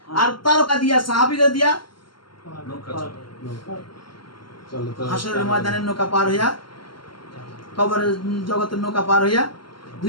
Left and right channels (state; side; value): late; right; 0.72 ms